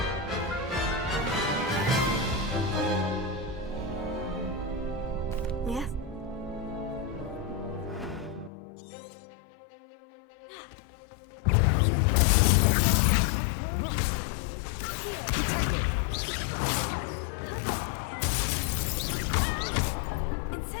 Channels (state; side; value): drops out; right; at 8.5 s